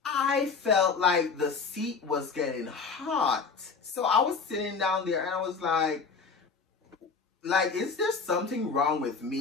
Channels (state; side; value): quieter; right; 5.0 dB